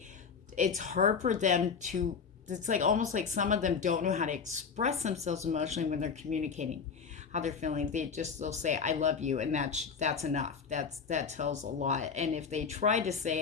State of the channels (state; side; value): quieter; right; 5.9 dB